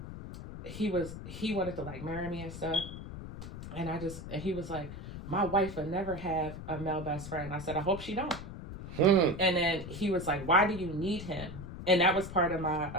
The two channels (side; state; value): left; noise; rumble, 10 dB below the sound